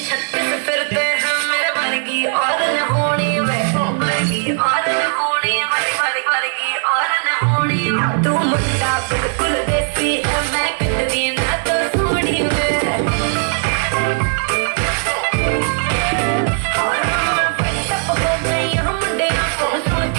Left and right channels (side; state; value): left; silent; 56 dB below the other